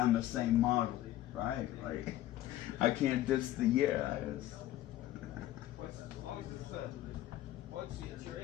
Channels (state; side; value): quieter; right; 14.2 dB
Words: the same model, right? Like, I can't diss the year. It's your